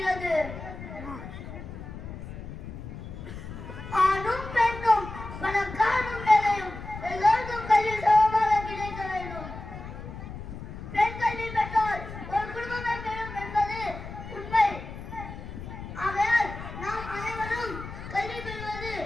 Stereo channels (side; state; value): left; noise; rumble, 10 dB below the sound